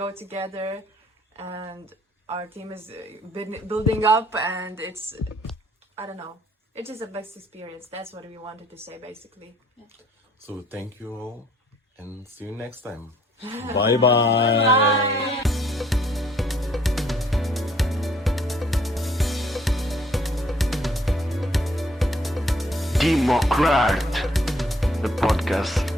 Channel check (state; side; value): normal; both; correlation 0.62